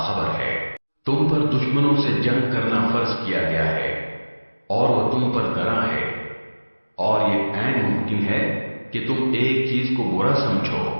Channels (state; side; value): inverted; both; correlation -1.00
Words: ہے۔ تم پر دشمنوں سے جنگ کرنا فرض کیا گیا ہے اور وہ تم پر گراں ہے، اور یہ عین ممکن ہے کہ تم ایک چیز کو برا سمجھو